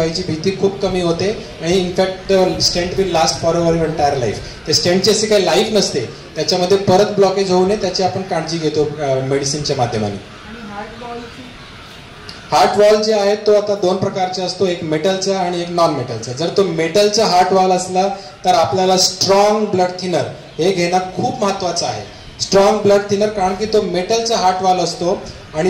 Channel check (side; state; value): both; identical; correlation 1.00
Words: भीती खूप कमी होते आणि in fact stent will last for your entire life. ते स्टेंटची अशी काही लाईफ नसते, त्याच्यामध्ये परत ब्लॉकेज होऊ नये त्याची आपण काळजी घेतो मेडिसिनच्या माध्यमाने. हार्ट वॉल जे आहे तो आता दोन प्रकारचे असतो, एक मेटलचा आणि एक नॉन मेटलचा. जर तो मेटलचा हार्ट वॉल असला तर आपल्याला स्ट्रॉंग ब्लड थिनर हे घेणं खूप महत्वाचं आहे. स्ट्रॉंग ब्लड थिनर, कारण की तो मेटलचा हार्ट वॉल असतो